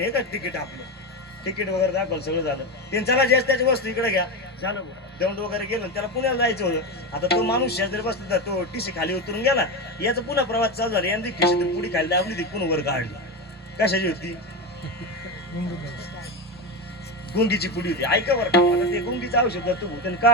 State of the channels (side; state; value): both; normal; correlation 0.17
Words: हे का तिकीट आपलं तिकीट वगैरे दाखवलं सगळं झालं. ते चला जास्त त्याची वस्तू इकडे घ्या झालं. दौंड वगैरे गेलं त्याला पुण्याला जायचं होतं. आता तो माणूस शेजारी बसला तो टीसी खाली उतरून गेला, याचा पुन्हा प्रवास चालू झाला. यांनी खिशीतून पुढे खाली दाबली ती पुन्हा वर काढली. कशाची होती गुंगीची पुडी होती. ऐका बरं का, आता ते गुंगीचं औषध तू त्याने